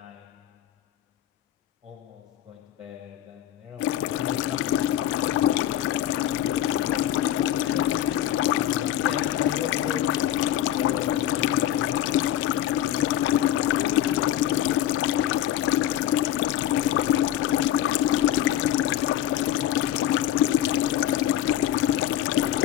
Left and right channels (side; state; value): right; quieter; 12.1 dB